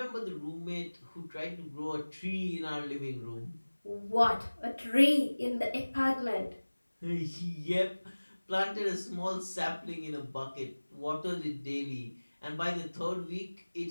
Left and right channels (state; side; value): inverted; both; correlation -1.00